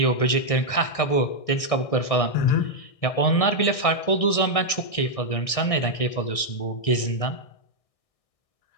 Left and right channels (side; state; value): right; late; 1.6 ms